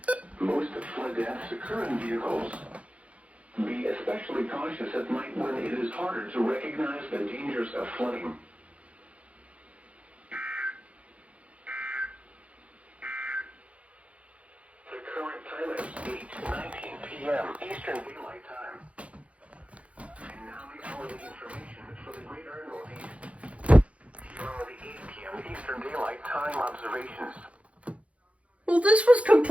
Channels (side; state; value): left; late; 0.063 ms